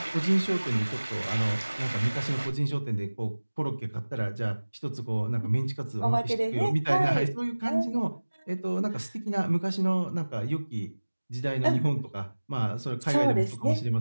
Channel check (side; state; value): both; inverted; correlation -1.00